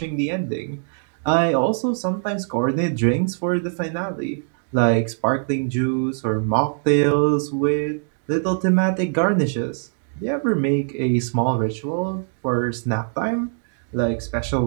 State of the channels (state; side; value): silent; left; digital silence